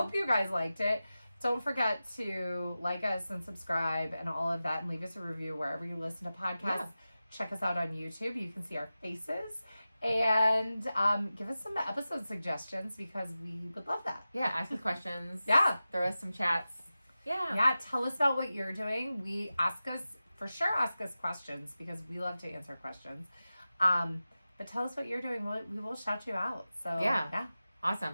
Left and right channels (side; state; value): both; inverted; correlation -0.95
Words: you guys liked it. Don't forget to like us and subscribe and all of that and leave us a review wherever you listen to podcasts. Yeah. Check us out on YouTube. You can see our faces. And give us some episode suggestions because we would love that. Yeah. Ask us questions. Yeah. Throw us some chats. Yeah. Yeah. Tell us about what you're doing. Ask us questions because we love to answer questions. But tell us what you're doing. We will shout you out. So yeah.